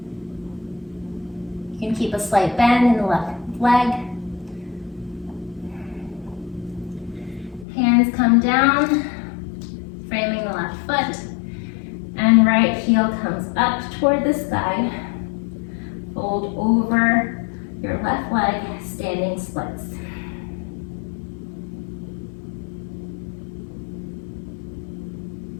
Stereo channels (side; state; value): right; drops out; at 7.7 s